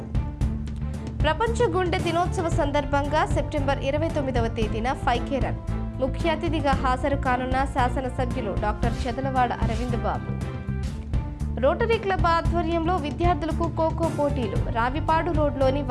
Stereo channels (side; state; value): both; identical; correlation 1.00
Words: ప్రపంచ గుండె దినోత్సవ సందర్భంగా సెప్టెంబర్ 29వ తేదీన 5K రన్ ముఖ్య అతిథిగా హాజరు కానున్న శాసనసభ్యులు డాక్టర్ చెదలవాడ అరవింద్ బాబు. రోటరీ క్లబ్ ఆధ్వర్యంలో విద్యార్థులకు ఖోఖో పోటీలు. రావిపాడు రోడ్లోని